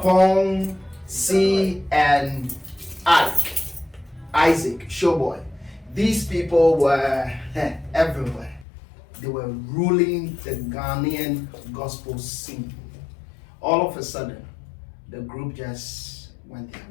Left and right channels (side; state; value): right; drops out; at 8.7 s